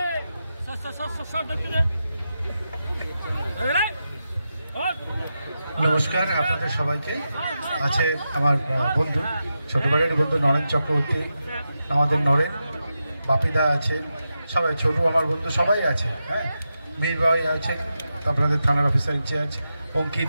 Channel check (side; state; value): both; inverted; correlation -0.89